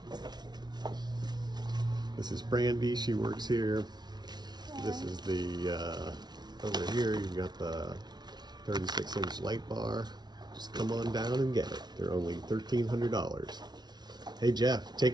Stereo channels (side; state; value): left; late; 0.20 ms